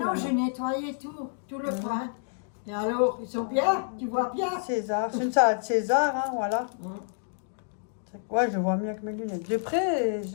non, j'ai nettoyé tout le coin. Et alors, ils sont bien? Tu vois bien? César. C'est une salade César, hein, voilà. Hum. Ouais, je vois mieux avec mes lunettes. De près,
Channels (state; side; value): silent; right; digital silence